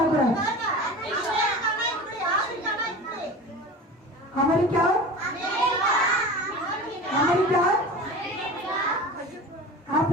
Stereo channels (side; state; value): both; normal; correlation 0.34